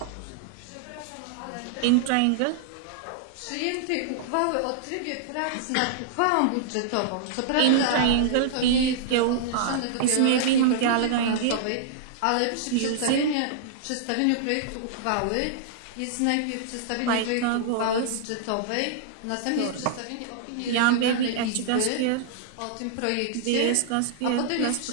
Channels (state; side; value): different; both; correlation -0.01